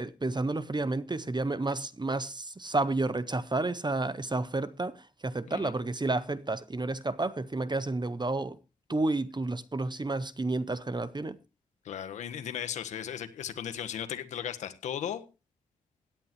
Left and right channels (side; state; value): both; normal; correlation 0.69